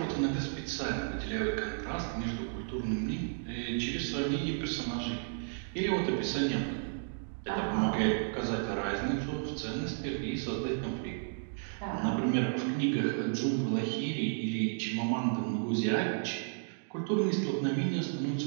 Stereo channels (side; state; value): left; silent; digital silence